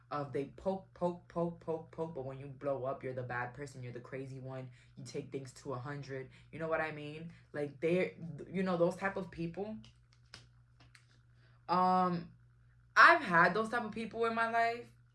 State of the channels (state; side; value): identical; both; correlation 1.00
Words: of they poke, but when you blow up, you're the bad person, you're the crazy one, you take things to 100. You know what I mean? Like, they're, you know, those type of people. I've had those type of people in my life